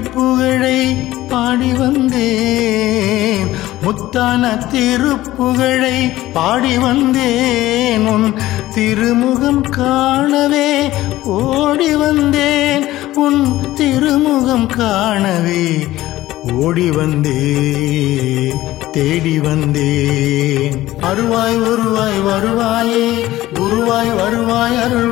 பாடி வந்தேன். முத்தான திருப்புகழை பாடி வந்தேன். உன் திருமுகம் காணவே ஓடி வந்தேன். உன் திருமுகம் காணவே ஓடி வந்தேன் தேடி வந்தேன். அருள்வாய் உருவாய் வருவாயே குருவாய் வருவாய்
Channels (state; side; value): quieter; right; 15.9 dB